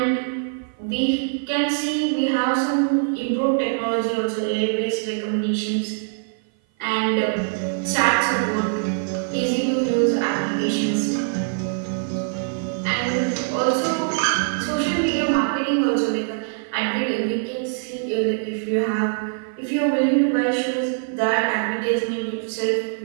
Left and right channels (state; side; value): silent; left; 55 dB below the other